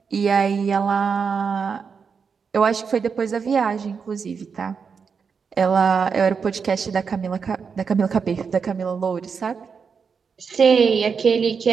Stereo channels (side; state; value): left; quieter; 5.9 dB